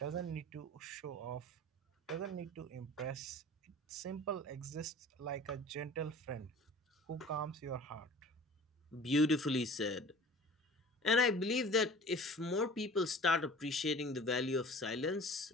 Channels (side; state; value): both; normal; correlation 0.43